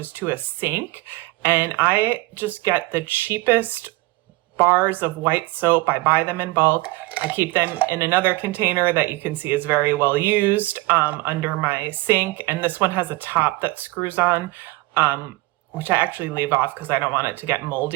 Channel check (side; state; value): left; quieter; 21.3 dB